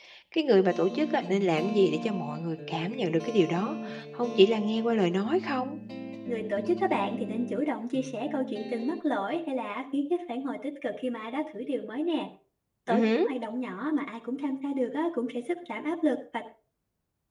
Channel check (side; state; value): both; identical; correlation 1.00